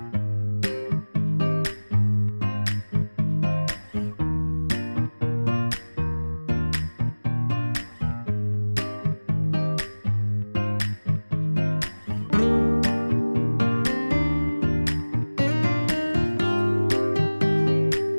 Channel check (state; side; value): inverted; both; correlation -1.00